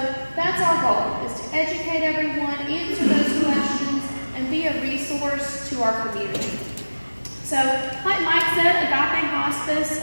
that's our goal, is to educate everyone, answer those questions, and be a resource to our community. So, like Mike said, Agape Hospice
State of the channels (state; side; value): inverted; both; correlation -1.00